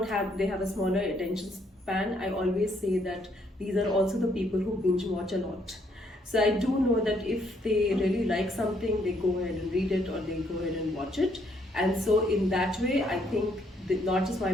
have, they have a smaller attention span, I always say that these are also the people who binge watch a lot. So I do know that if they really like something, they go ahead and read it or they go ahead and watch it. And so in that way, I think that not just my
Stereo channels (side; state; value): both; normal; correlation 0.70